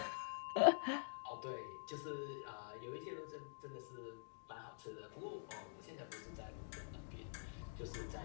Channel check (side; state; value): right; silent; digital silence